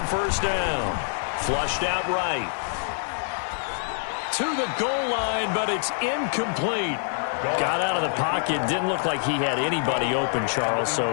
first down. Flushed out right. To the goal line, but it's incomplete. Got out of the pocket. Didn't look like he had anybody open, Charles,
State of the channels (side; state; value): right; silent; digital silence